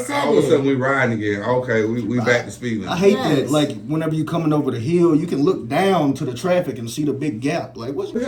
sudden we riding again. Okay, we back to speeding. I hate Yes. that. Like, whenever you coming over the hill, you can look down to the traffic and see the big gap. Like, what's What's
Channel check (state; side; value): identical; both; correlation 1.00